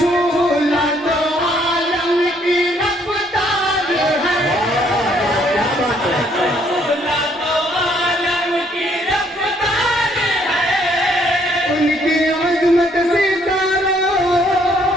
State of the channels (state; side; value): normal; both; correlation 0.66